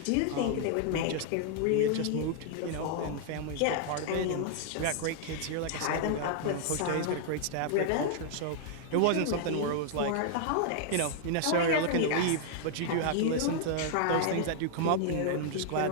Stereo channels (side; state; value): both; different; correlation 0.00